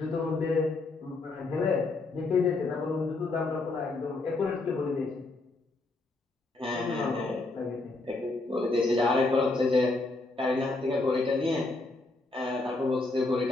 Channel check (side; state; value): right; quieter; 3.3 dB